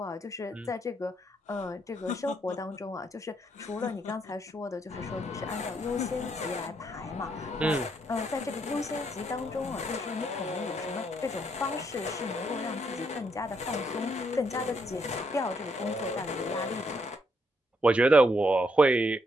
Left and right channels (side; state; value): both; normal; correlation 0.75